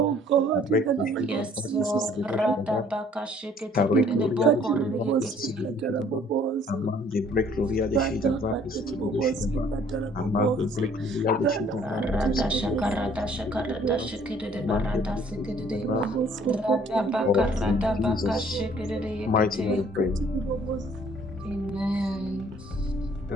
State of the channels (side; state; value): both; normal; correlation 0.58